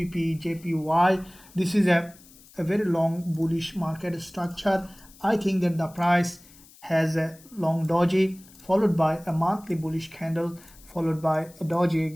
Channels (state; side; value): noise; left; hiss, 24 dB below the sound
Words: this is a very long bullish market structure. I think that the price has a long doji followed by a monthly bullish candle followed by a doji